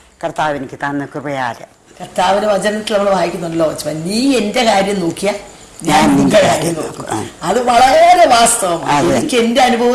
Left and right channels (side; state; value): both; identical; correlation 1.00